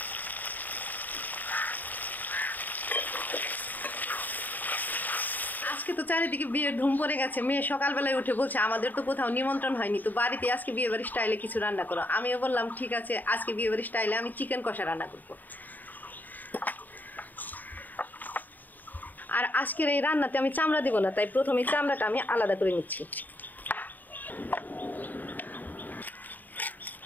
আজকে তো চারিদিকে বিয়ের ধুম পড়ে গেছে। মেয়ে সকালবেলায় উঠে বলছে আমাদের তো কোথাও নিমন্ত্রণ হয়নি, তো বাড়িতে আজকে বিয়েবাড়ি স্টাইলে কিছু রান্না করো। আমিও বললাম ঠিক আছে, আজকে বিয়েবাড়ি স্টাইলে আমি চিকেন কষা রান্না করব। আর আজকের এই রান্নাতে আমি চামড়া দিব না, তাই প্রথমে চামড়াটা আমি আলাদা করে নিচ্ছি।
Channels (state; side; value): late; right; 0.086 ms